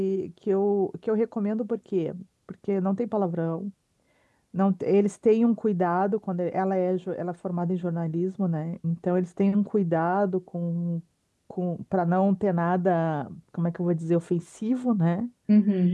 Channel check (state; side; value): identical; both; correlation 1.00